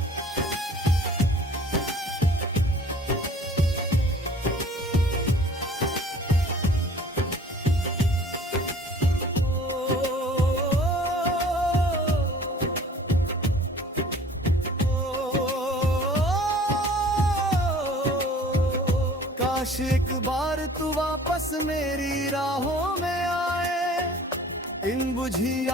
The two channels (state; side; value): normal; both; correlation 0.49